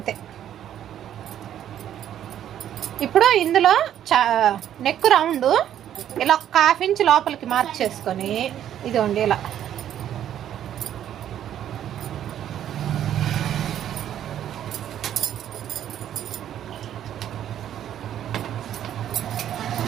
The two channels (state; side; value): quieter; left; 10.7 dB